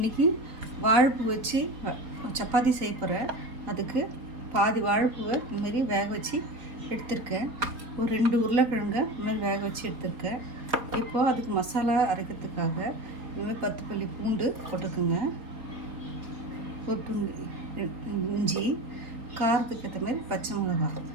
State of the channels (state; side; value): late; left; 4.3 ms